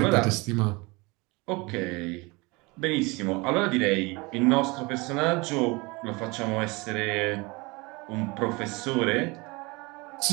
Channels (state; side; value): quieter; left; 25.6 dB